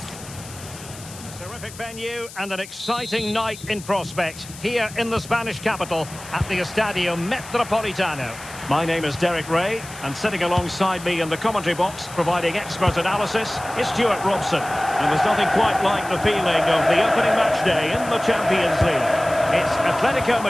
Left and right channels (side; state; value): left; noise; hiss, 16 dB below the sound